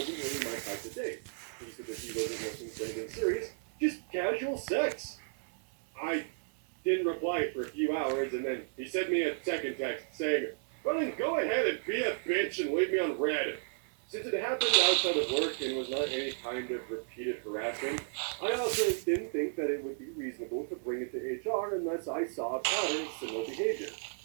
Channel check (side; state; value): left; silent; 55 dB below the other